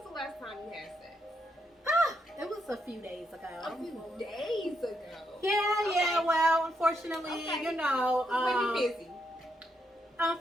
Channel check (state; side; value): normal; both; correlation 0.79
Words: the last time you had sex? It was a few days ago. A few days ago. Yeah. Well, unfortunately, you know, Maybe busy.